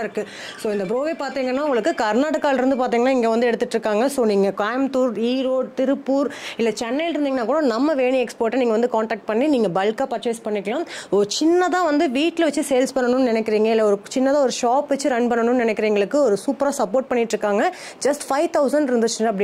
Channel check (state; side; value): identical; both; correlation 1.00